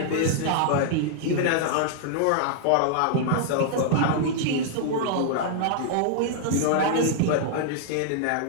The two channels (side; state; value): both; different; correlation -0.01